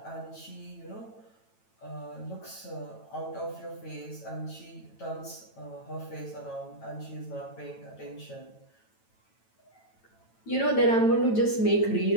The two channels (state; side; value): late; right; 9.0 ms